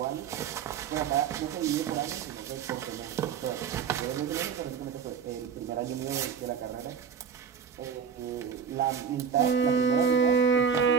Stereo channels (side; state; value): left; quieter; 7.0 dB